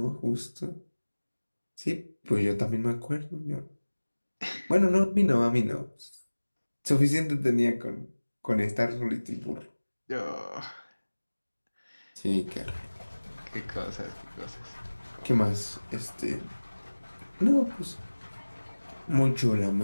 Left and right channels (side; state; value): both; inverted; correlation -1.00